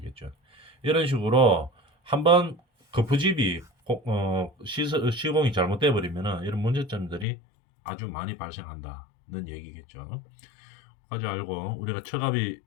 이런 식으로 한번 거푸집이 시공이 잘못돼 버리면은 이런 문제점들이 아주 많이 발생한다는 얘기겠죠. 까지 알고 우리가 처갑이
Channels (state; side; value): drops out; right; at 7.2 s